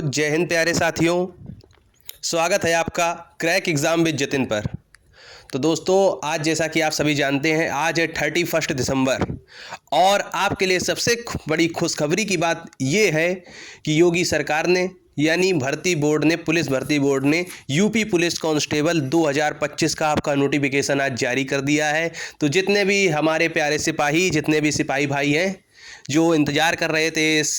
जय हिंद प्यारे साथियों, स्वागत है आपका क्रैक एग्ज़ाम विद जतिन पर। तो दोस्तों, आज जैसा कि आप सभी जानते हैं, आज है 31 दिसंबर और आपके लिए सबसे बड़ी खुशखबरी की बात ये है कि योगी सरकार ने यानी भर्ती बोर्ड ने, पुलिस भर्ती बोर्ड ने यूपी पुलिस कांस्टेबल 2025 का आपका नोटिफिकेशन आज जारी कर दिया है। तो जितने भी हमारे प्यारे सिपाही, जितने भी सिपाही भाई हैं जो इंतज़ार कर रहे थे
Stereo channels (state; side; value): identical; both; correlation 1.00